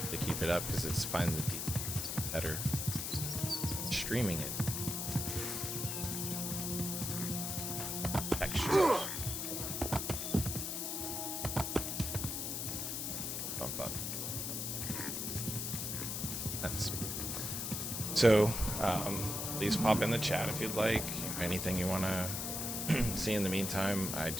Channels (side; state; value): left; noise; hiss, 2 dB below the sound